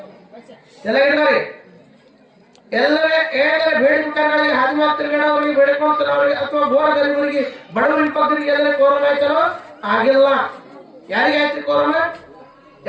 ಎಲ್ಲ ಹಿಡಿದವ್ರಿ ಎಲ್ಲರೇ ಬೇಡಿಕೆಗಳಿಗೆ ಹಾಸಿಗೆ ತಿರುಗಾಡೋರಿಗೆ ಬೇಡಿಕೊಳ್ತಿರೋರಿಗೆ ಅಥವಾ ಘೋರ ಗರೀಬರಿಗೆ ಬಡವರಿಗೆ ಬಗ್ಗರಿಗೆ ಎಲ್ಲರ ಕೊರೋನಾ ಆಯ್ತೇನೋ ಆಗಿಲ್ಲ ಯಾರಿಗೆ ಆಯ್ತು ಕೊರೋನಾ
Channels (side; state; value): both; identical; correlation 1.00